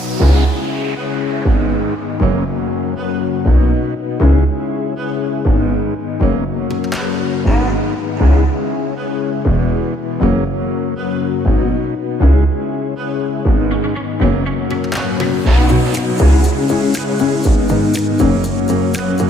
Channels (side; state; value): both; normal; correlation 0.71